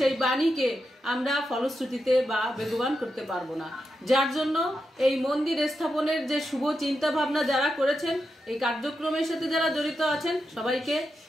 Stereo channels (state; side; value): normal; both; correlation 0.87